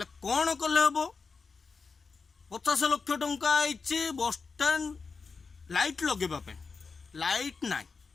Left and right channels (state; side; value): quieter; right; 4.8 dB